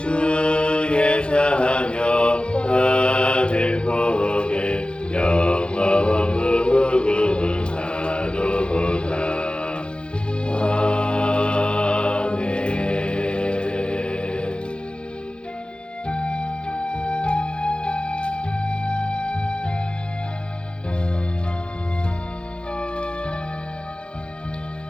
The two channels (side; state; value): right; late; 0.056 ms